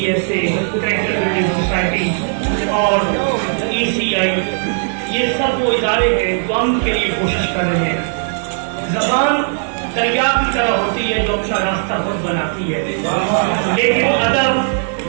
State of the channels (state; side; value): silent; left; digital silence